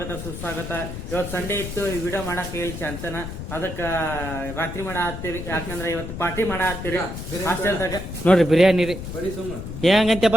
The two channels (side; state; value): left; noise; rumble, 8 dB below the sound